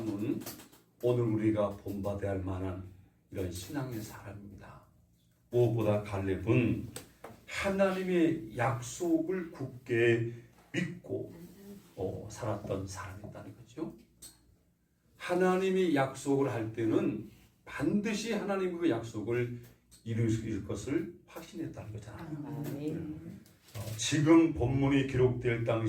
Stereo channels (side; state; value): both; identical; correlation 1.00